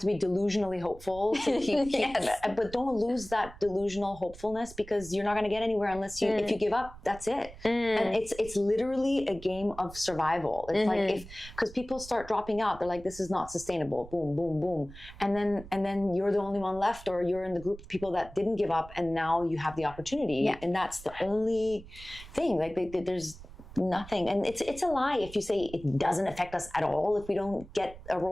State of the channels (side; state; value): right; noise; rumble, 17 dB below the sound